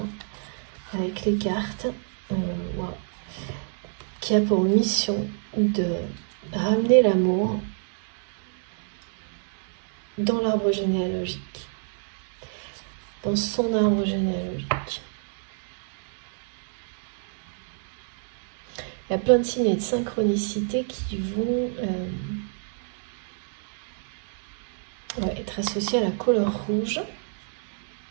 avec les cartes. Wow. Qui a pour mission de ramener l'amour dans l'arbre généalogique, dans son arbre généalogique. Il y a plein de signes et de synchronicités qui vont être associés à la couleur rouge.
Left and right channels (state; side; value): silent; left; digital silence